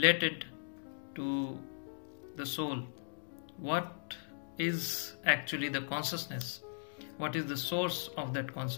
to the soul? What is actually the consciousness? What is the source of that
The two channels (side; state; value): right; silent; digital silence